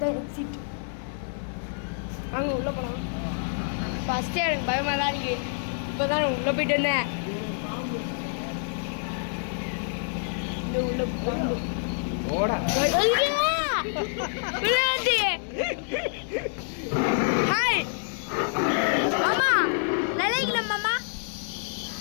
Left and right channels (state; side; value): silent; right; digital silence